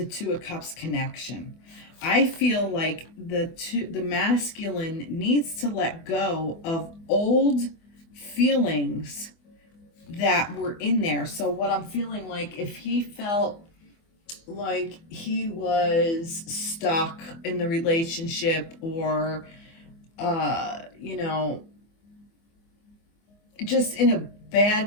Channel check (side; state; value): right; late; 24 ms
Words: Two of Cups connection. I feel like the masculine needs to let go of old feelings that were in there. So what I'm feeling like, if he felt like he was stuck in the relationship, or you know, just in a